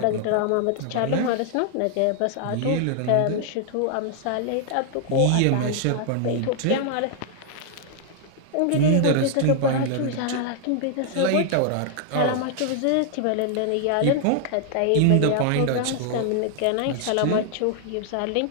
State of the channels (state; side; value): different; both; correlation 0.00